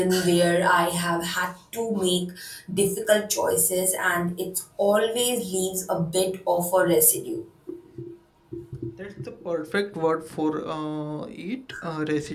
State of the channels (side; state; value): both; identical; correlation 1.00